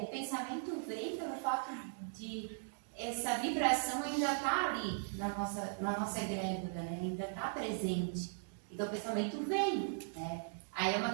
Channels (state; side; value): silent; left; digital silence